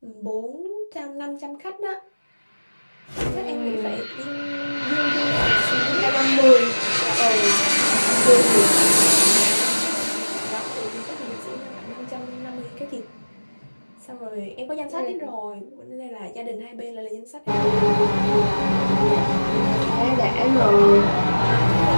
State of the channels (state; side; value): inverted; both; correlation -1.00